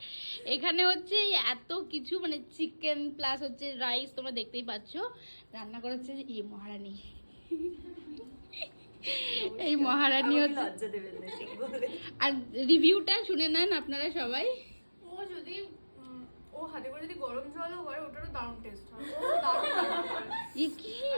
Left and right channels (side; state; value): both; inverted; correlation -1.00